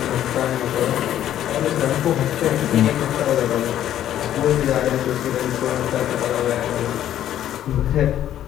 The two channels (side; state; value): right; quieter; 11.5 dB